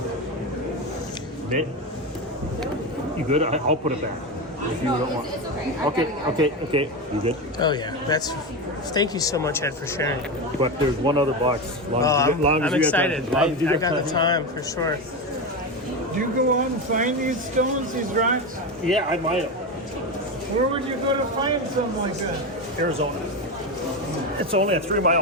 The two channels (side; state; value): both; normal; correlation 0.17